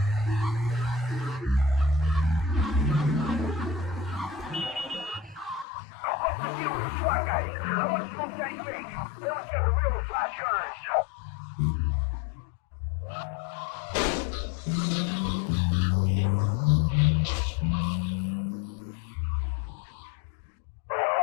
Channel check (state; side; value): drops out; right; at 5.7 s